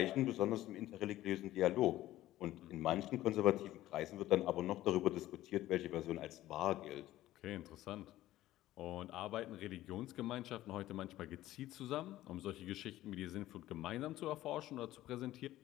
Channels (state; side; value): quieter; right; 15.0 dB